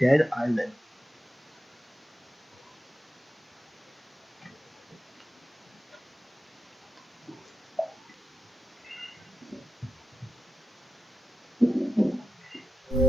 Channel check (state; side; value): normal; both; correlation 0.91